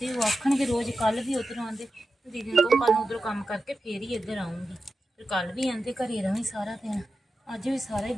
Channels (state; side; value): normal; both; correlation 0.91